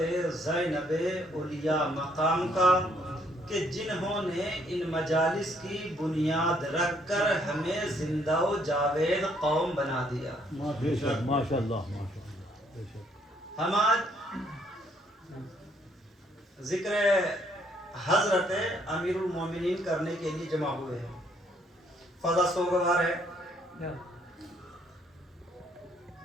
زینب اولیاء مقام کا کہ جنہوں نے ان مجالس کی بنیاد رکھ کر ہمیں زندہ و جاوید قوم بنا دیا. ماشاءاللہ. ہم آج ذکر حضرت امیر المومنین کرنے کے لیے جمع ہوئے ہیں. فضا سوگوار ہے،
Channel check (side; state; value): both; normal; correlation 0.68